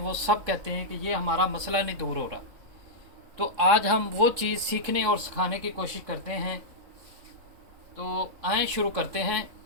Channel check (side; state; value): left; late; 3.5 ms